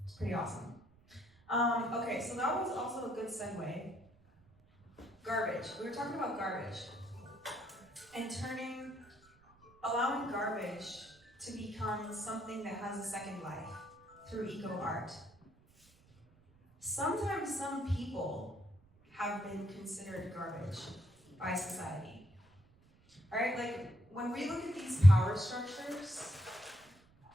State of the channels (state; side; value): noise; right; rumble, 29 dB below the sound